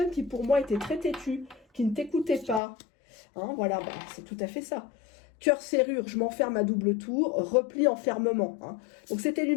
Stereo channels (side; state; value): right; drops out; at 2.6 s